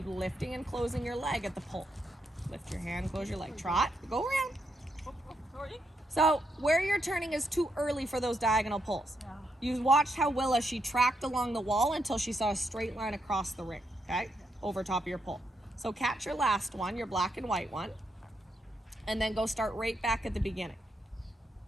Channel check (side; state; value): both; normal; correlation 0.80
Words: lifting and closing your leg at the pull. Lift your hand, close your leg. Trot. Go around. So where you're turning is too early for those diagonal pulls. Yeah. You watched how Willa, she tracked along the wall until she saw a straight line across the ring, okay? Over top of your pull. So catch your last one, your black and white one, and then go start right back at the beginning.